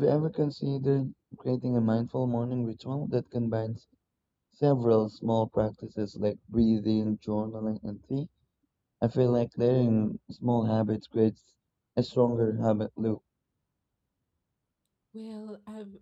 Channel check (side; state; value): both; identical; correlation 1.00